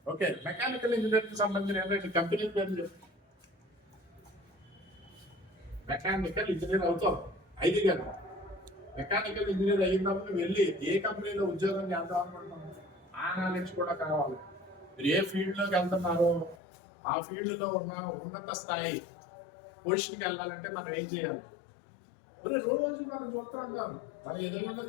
ఓకే, మెకానికల్ ఇంజనీర్కి సంబంధించిన ఏంటంటే కంపెనీ పేరు. మెకానికల్ ఇంజనీర్ అవుతావు 5 గంటలు. మెకానికల్ ఇంజనీర్ అయినప్పుడు వెళ్ళి ఏ కంపెనీలో ఉద్యోగం చేద్దాం అనుకుంటున్నాం ఆ నాలెడ్జ్ కూడా కావాలి. మీరు ఏ ఫీల్డ్ లోకి వెళ్తున్నారో ఆ ఫీల్డ్ లో ఉన్న ఉన్నత స్థాయి పొజిషన్కి వెళ్ళాలంటే మనం ఏం చేయాలి? మరి రోజు మనం చూస్తూ ఉంటాం, మనం ఎదురుగా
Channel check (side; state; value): right; drops out; at 16.6 s